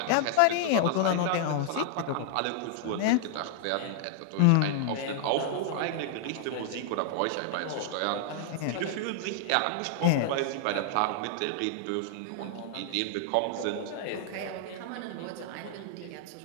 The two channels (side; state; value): both; different; correlation -0.01